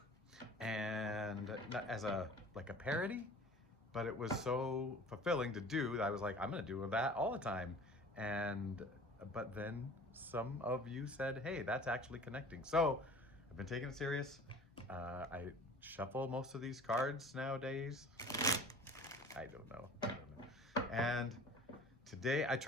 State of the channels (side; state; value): both; normal; correlation 0.44